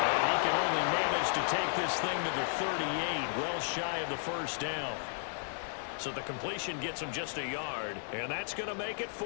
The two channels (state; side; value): silent; right; digital silence